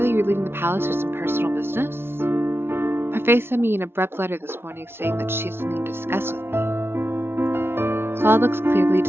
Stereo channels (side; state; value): left; late; 0.12 ms